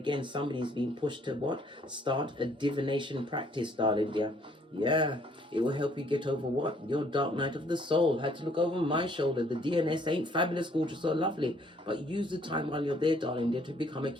somebody's being pushed to what? Start a divination practice, darling dear. Yeah, it will help you get over what? Your dark night of the soul. Had to look over my shoulder. The DNS ain't fabulous, gorgeous, or lovely. But use the time while you're there, darling dear, to become a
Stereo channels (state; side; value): normal; both; correlation 0.63